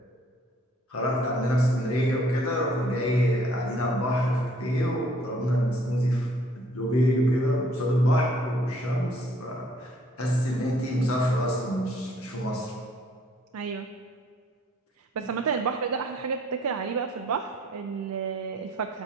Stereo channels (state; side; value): normal; both; correlation 0.61